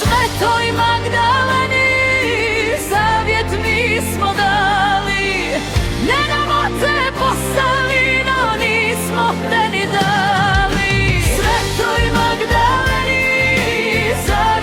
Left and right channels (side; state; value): both; identical; correlation 1.00